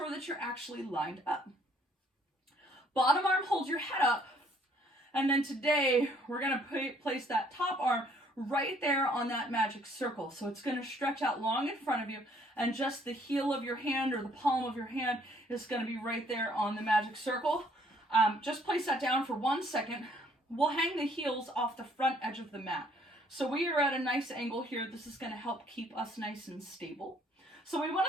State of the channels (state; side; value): normal; both; correlation 0.63